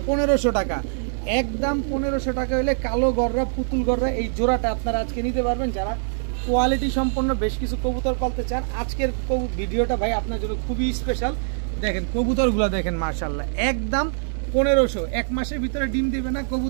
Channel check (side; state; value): left; silent; digital silence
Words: 1500 টাকা, একদম 1500 টাকা হলে কালো গররা পুতুল গররা এই জোড়াটা আপনারা আজকে নিতে পারবেন। যারা কোয়ালিটি সম্পন্ন বেশ কিছু কবুতর পালতে চান, আজকের ভিডিওটা ভাই আপনার জন্য খুবই স্পেশাল। দেখেন কবুতরগুলো দেখেন, মাশাআল্লাহ, একদম 1500, এক মাসের ভিতরে ডিম দিবে না,